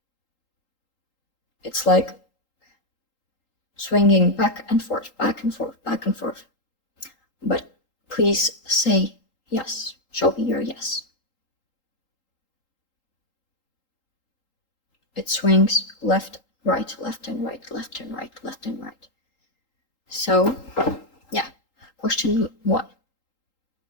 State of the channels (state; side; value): late; right; 3.8 ms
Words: It's like swinging back and forth, back and forth, back and forth. But please say yes. Show me your yes. It swings left, right, left and right, left and right, left and right. So, yeah. Question 1.